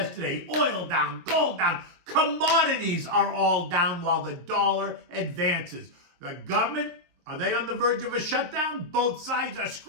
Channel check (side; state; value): left; late; 23 ms